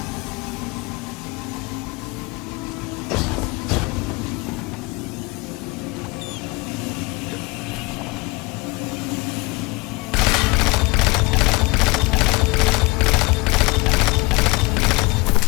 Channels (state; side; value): quieter; right; 25.1 dB